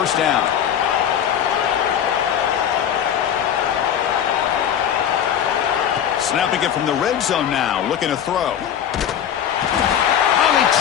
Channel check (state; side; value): quieter; right; 9.3 dB